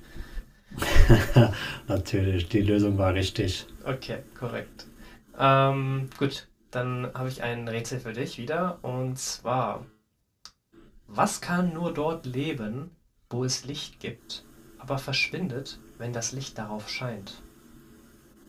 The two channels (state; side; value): identical; both; correlation 1.00